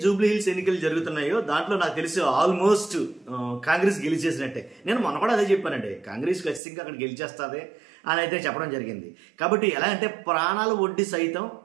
Jubilee hills ఎన్నికలు జరుగుతున్నాయో దాంట్లో నాకు తెలిసి ఆల్మోస్ట్ కాంగ్రెస్ గెలిచేసినట్టే. నేను మొన్న కూడా అదే చెప్పానండి, కాంగ్రెస్ ఖచ్చితంగా అక్కడ గెలిచేస్తుంది అని అయితే చెప్పడం జరిగింది. కాబట్టి ఎలా అంటే ప్రాణాలు ఒడ్డి సైతం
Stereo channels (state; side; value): drops out; left; at 6.6 s